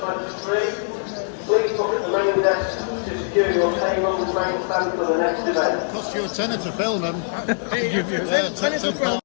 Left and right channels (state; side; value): silent; right; digital silence